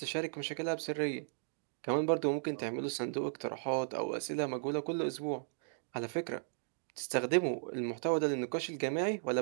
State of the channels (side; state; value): left; silent; digital silence